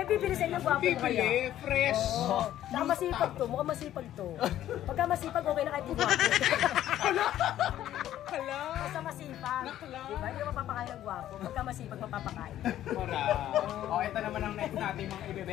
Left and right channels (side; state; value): right; quieter; 12.4 dB